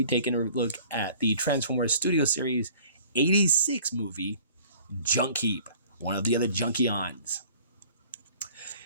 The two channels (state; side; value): inverted; both; correlation -0.51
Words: taking a look at the Transformers Studio Series 86 movie, Junkheap, one of the other Junkions.